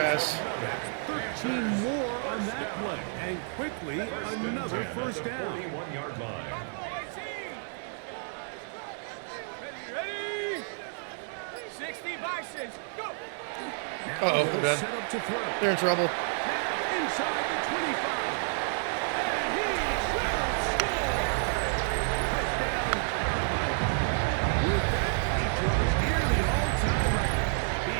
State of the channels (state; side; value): silent; left; 58 dB below the other